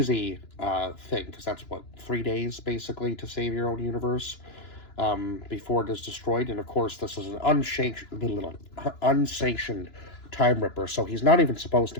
thing, because that's, 3 days basically to save your own universe. before it is destroyed. And of course, this is an unsanctioned Time Ripper, so he's not even supposed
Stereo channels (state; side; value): late; right; 2.9 ms